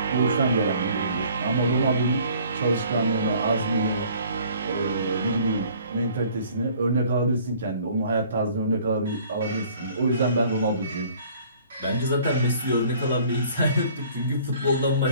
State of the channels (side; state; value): both; inverted; correlation -0.54